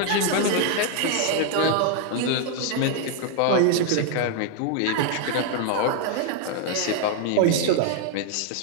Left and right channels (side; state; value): both; different; correlation 0.00